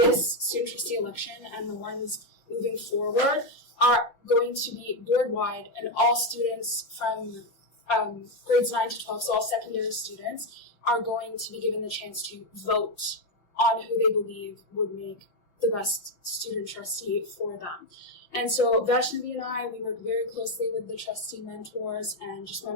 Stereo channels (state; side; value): late; right; 5.7 ms